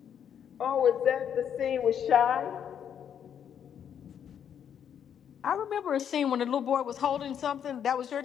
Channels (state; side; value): quieter; right; 8.6 dB